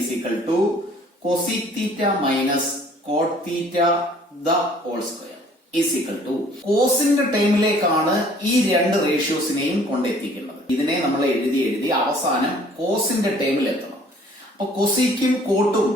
equal to cosec theta minus cot theta the whole square is equal to കോസിന്റെ ടൈമിലേക്കാണ് ഈ രണ്ട് റേഷ്യോസിനെയും കൊണ്ടെത്തിക്കുന്നത്. ഇതിനെ നമ്മൾ എഴുതി അവസാനം കോസിന്റെ ടൈമിൽ എത്തണം. അപ്പൊ കൊസീക്കും കോട്ടും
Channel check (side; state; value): both; normal; correlation 0.56